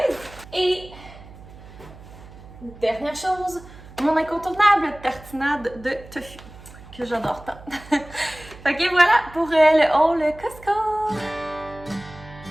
Et dernière chose, mon incontournable tartinade de tofu, que j'adore tant. Fait que voilà pour le haul Costco!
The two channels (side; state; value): right; noise; hum, 18 dB below the sound